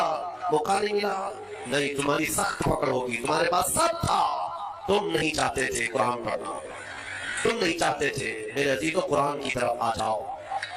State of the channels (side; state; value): both; identical; correlation 1.00